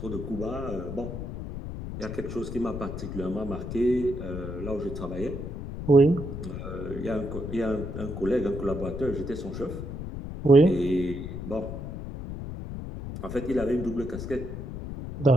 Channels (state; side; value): noise; left; rumble, 7 dB below the sound